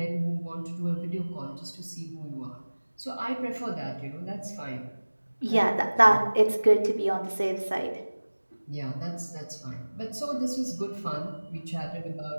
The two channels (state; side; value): inverted; both; correlation -1.00